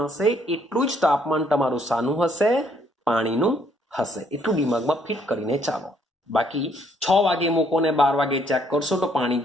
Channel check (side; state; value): both; normal; correlation 0.67